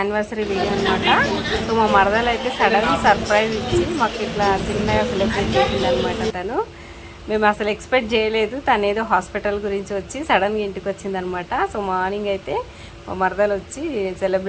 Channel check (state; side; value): identical; both; correlation 1.00